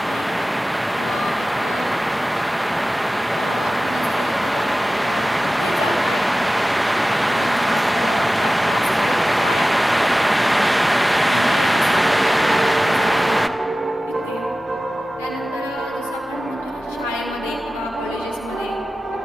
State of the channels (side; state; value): both; normal; correlation 0.95